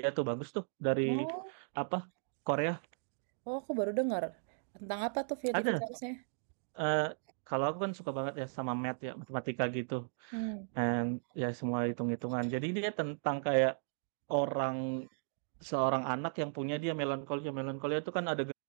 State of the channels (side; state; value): left; silent; digital silence